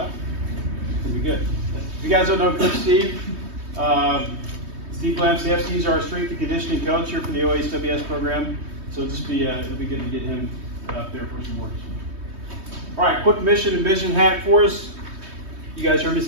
It'll be good. If you guys don't know Coach Steve, Steve Lamsey, he's our strength and conditioning coach here for the OHWS program. So it'll be good to get him up there for some words. All right, quick mission and vision hack for us. You guys heard me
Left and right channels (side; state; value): left; late; 3.2 ms